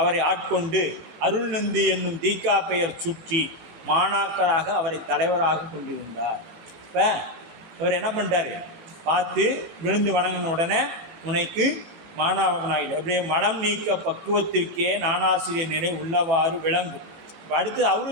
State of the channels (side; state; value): left; late; 18 ms